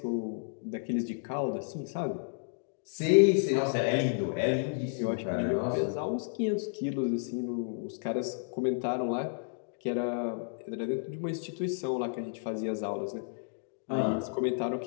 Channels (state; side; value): silent; right; digital silence